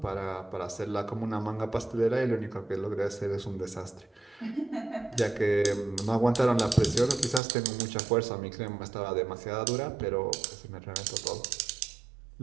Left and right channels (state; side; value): drops out; left; at 7.4 s